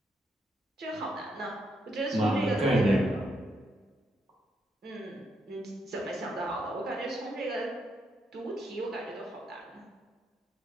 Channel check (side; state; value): both; normal; correlation 0.79